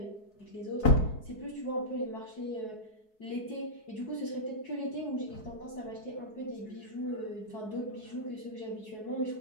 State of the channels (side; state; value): right; late; 4.7 ms